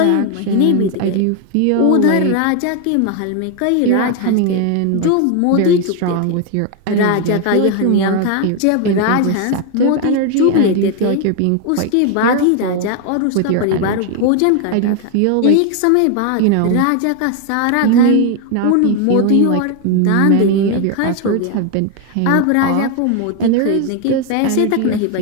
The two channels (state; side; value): different; both; correlation 0.01